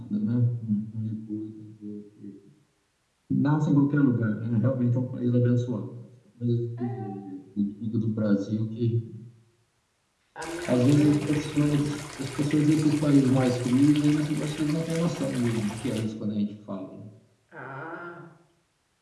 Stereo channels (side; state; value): both; identical; correlation 1.00